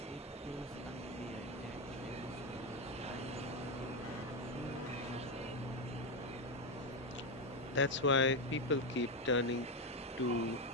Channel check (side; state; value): both; normal; correlation 0.09